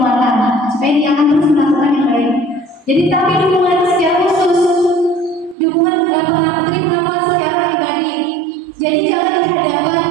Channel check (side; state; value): left; drops out; at 5.6 s